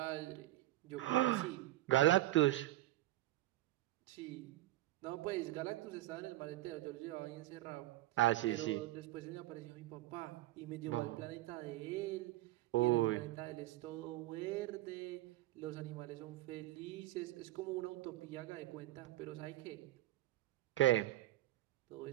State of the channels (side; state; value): left; quieter; 16.4 dB